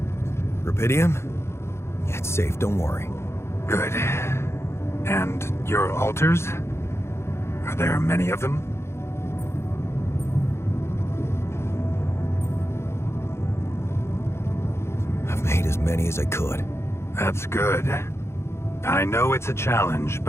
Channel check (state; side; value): late; right; 0.13 ms